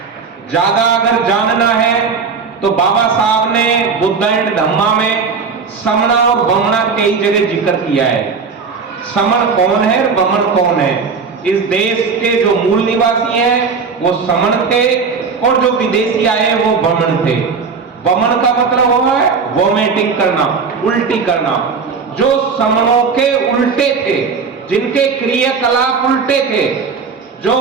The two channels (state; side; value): quieter; left; 5.2 dB